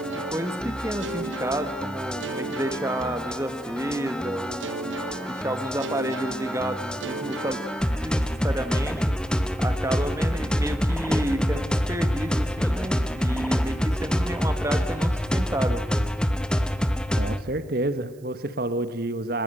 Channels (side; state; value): right; noise; hiss, 29 dB below the sound